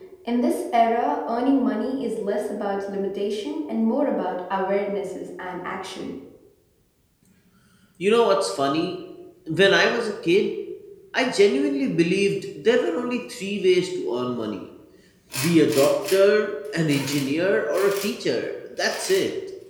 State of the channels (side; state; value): both; identical; correlation 1.00